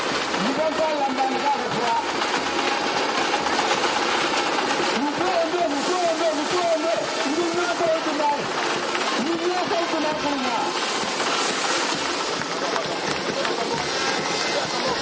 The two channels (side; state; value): both; identical; correlation 1.00